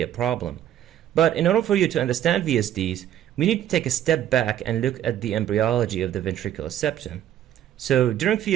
a problem. But in order for you to understand VSDs, we need to take a step back and look at the embryology of the ventricular septum. So, during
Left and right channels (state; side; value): quieter; left; 11.4 dB